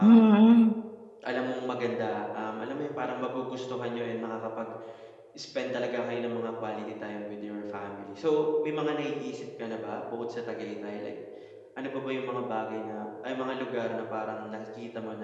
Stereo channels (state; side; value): identical; both; correlation 1.00